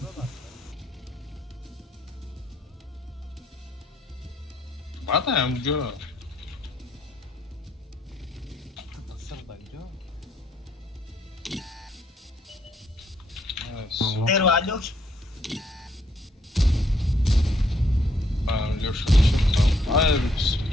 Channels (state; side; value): normal; both; correlation 0.70